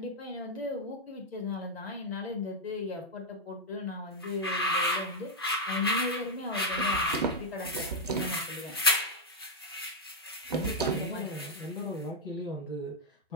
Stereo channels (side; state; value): both; normal; correlation -0.01